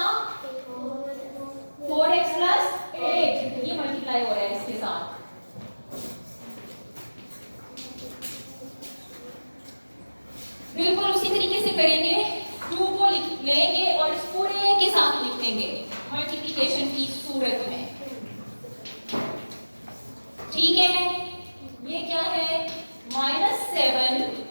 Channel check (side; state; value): both; inverted; correlation -1.00